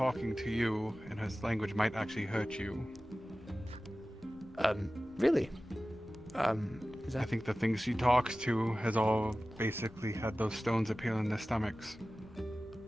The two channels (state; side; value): noise; left; rumble, 23 dB below the sound